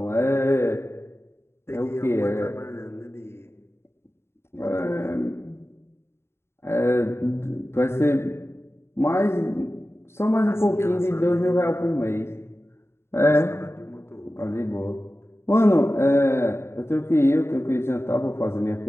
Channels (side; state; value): right; late; 0.12 ms